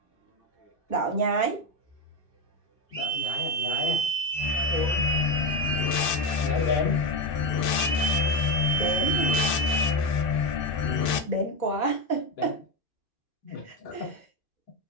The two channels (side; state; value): right; late; 2.6 ms